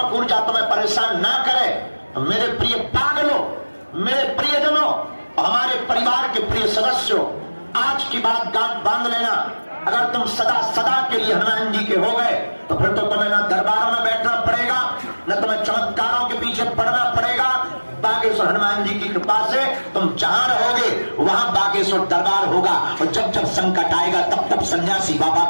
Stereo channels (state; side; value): inverted; both; correlation -1.00